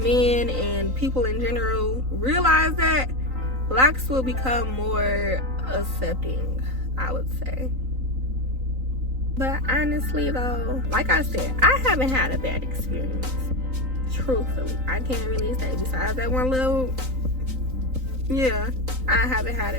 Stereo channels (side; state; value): left; late; 3.9 ms